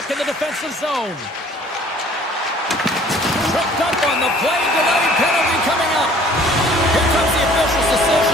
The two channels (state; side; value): normal; both; correlation 0.54